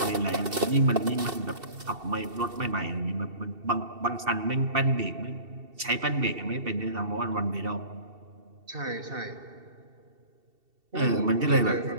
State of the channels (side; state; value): left; late; 2.7 ms